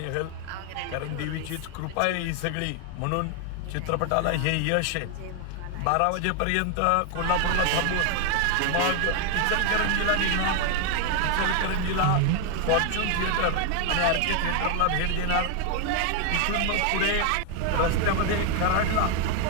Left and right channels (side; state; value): both; different; correlation 0.01